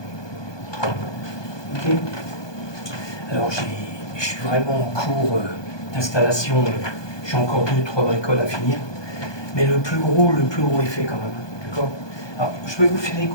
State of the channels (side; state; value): right; late; 1.2 ms